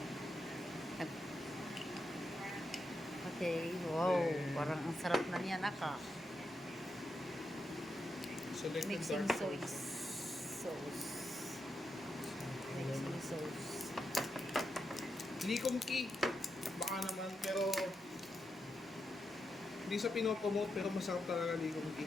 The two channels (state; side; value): normal; both; correlation 0.85